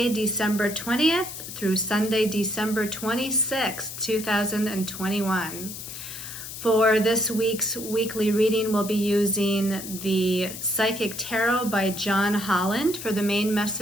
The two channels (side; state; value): left; noise; hiss, 10 dB below the sound